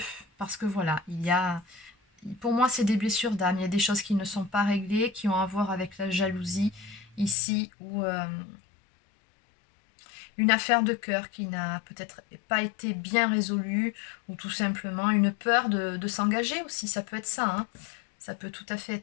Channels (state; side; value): drops out; right; at 7.4 s